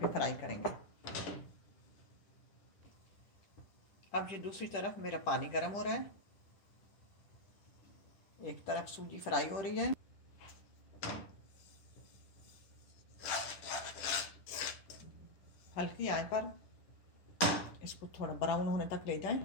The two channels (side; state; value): right; late; 10 ms